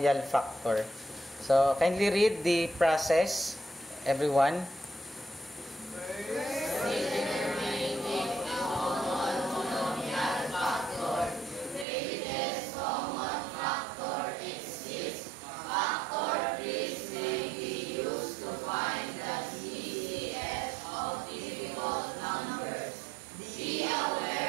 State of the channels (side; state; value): left; drops out; at 11.9 s